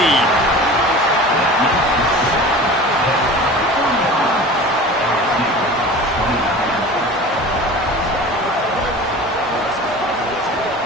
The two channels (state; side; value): normal; both; correlation 0.38